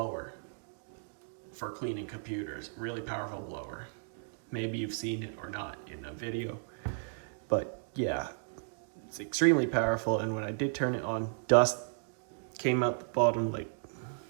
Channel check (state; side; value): silent; left; digital silence